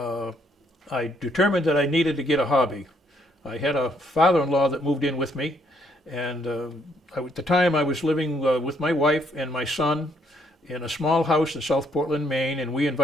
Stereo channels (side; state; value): both; normal; correlation 0.70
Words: determined that I needed to get a hobby. I had a father-in-law that moved in with me, and at the time I was living with my wife and my son in a small house in South Portland, Maine, and we